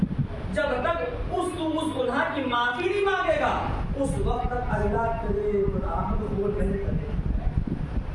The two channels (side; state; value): both; identical; correlation 1.00